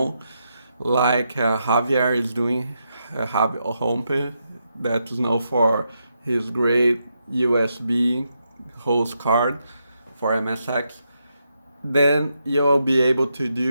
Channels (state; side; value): inverted; both; correlation -0.82